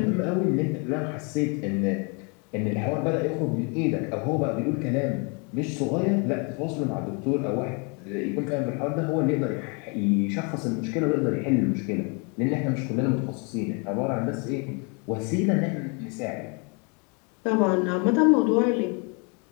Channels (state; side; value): quieter; right; 34.3 dB